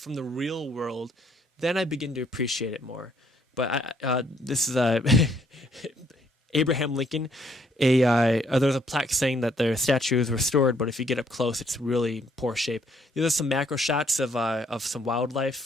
the real world, then I begin to appreciate it more. But this is Abraham Lincoln. There's a plaque saying that their statue is restored, but if you get up close, it's really poor shape. There's some macro shots of some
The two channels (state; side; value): normal; both; correlation 0.67